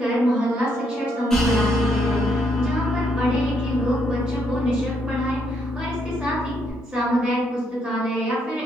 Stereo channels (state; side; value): normal; both; correlation 0.74